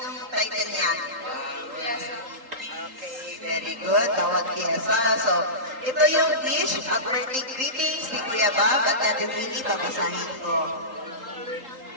title niyan? Okay, very good. Tawag Kiesa. So, ito yung wish at birthday greetings ni Kuya Bob at Ate Winnie. Babasahin ko.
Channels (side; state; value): left; late; 3.8 ms